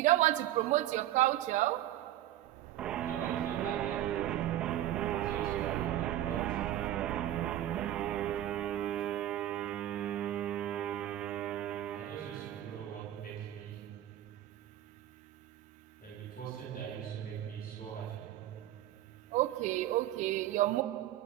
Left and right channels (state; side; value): quieter; left; 13.2 dB